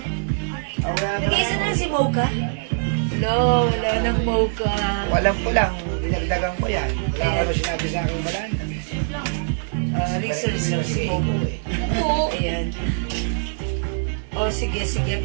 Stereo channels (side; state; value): left; silent; digital silence